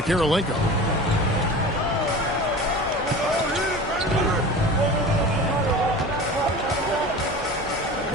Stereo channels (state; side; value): normal; both; correlation 0.35